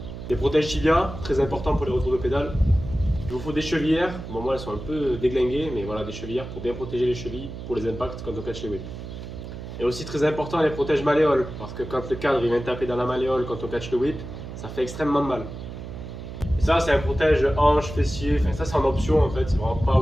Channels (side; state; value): right; noise; hum, 10 dB below the sound